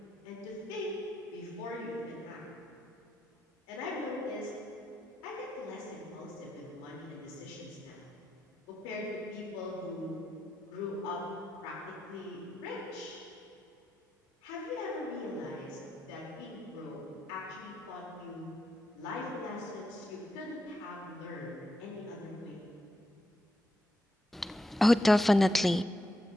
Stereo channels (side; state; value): both; normal; correlation 0.84